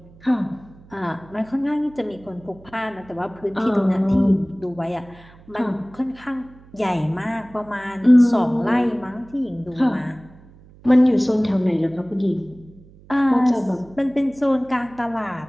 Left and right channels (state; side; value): noise; right; hum, 24 dB below the sound